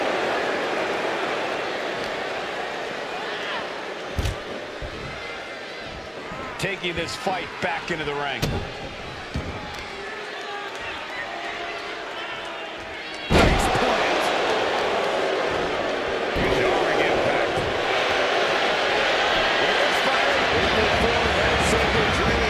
Taking this fight back into the ring. Jarring impact.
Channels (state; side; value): identical; both; correlation 1.00